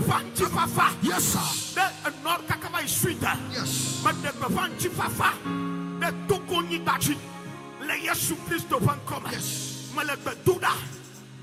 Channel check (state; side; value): identical; both; correlation 1.00